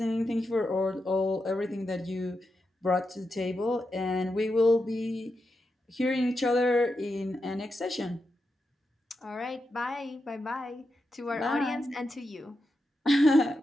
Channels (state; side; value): normal; both; correlation 0.87